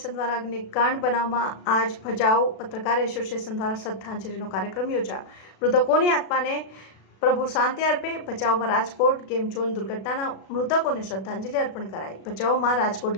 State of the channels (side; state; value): right; late; 36 ms